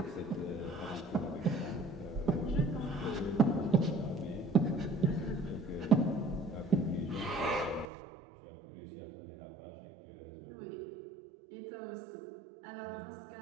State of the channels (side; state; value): left; drops out; at 7.9 s